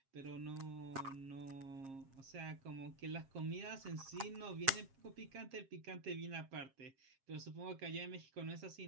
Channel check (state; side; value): late; left; 7.3 ms